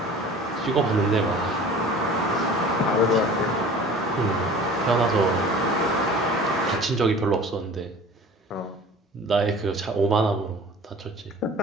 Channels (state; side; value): normal; both; correlation 0.43